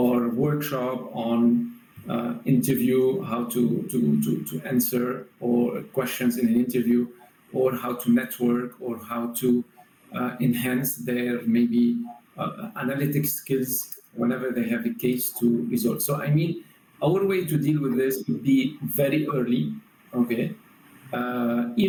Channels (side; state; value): both; identical; correlation 1.00